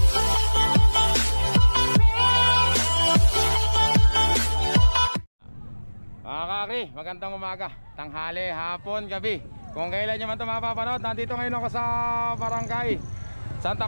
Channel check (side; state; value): both; inverted; correlation -1.00